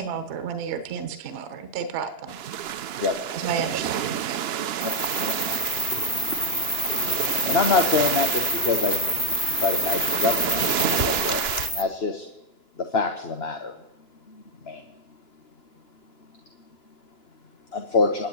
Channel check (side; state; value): right; late; 2.9 ms